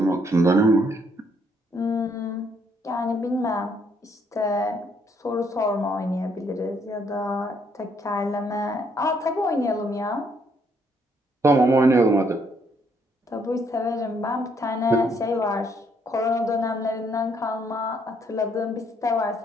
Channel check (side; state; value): both; normal; correlation 0.70